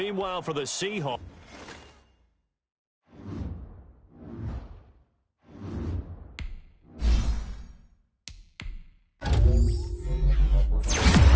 for the Seahawks,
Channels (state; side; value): identical; both; correlation 1.00